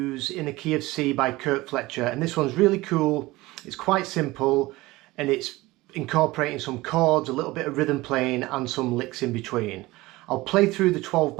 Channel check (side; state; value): left; quieter; 19.9 dB